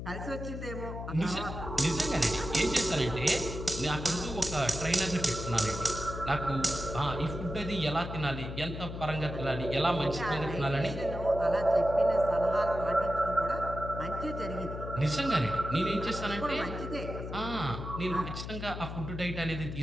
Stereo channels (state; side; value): noise; left; hum, 7 dB below the sound